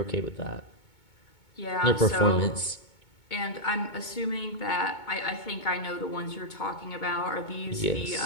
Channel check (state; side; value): late; right; 2.2 ms